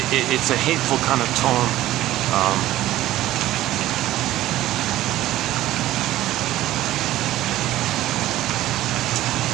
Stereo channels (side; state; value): left; quieter; 14.8 dB